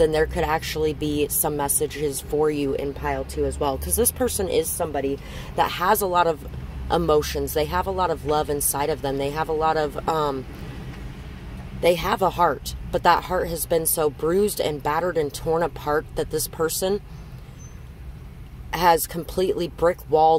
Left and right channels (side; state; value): both; identical; correlation 1.00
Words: there could actually be some messages for you in pile 2 as well. Because this person is somebody that has a lot of emotions. They have a lot of love inside of them. They have a lot of, they have a heart. But that heart has been so bruised and battered and torn apart that this person has completely